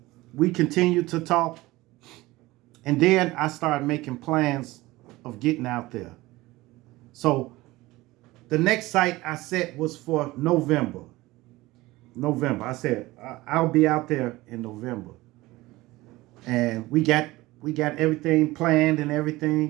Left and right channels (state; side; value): quieter; left; 19.4 dB